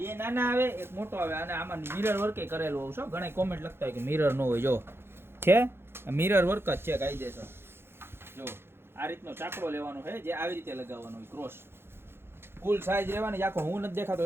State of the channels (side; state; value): left; late; 0.11 ms